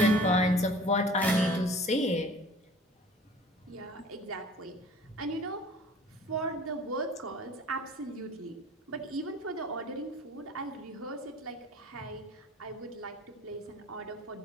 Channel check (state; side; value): normal; both; correlation 0.47